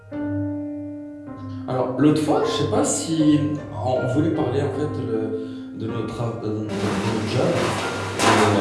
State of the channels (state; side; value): identical; both; correlation 1.00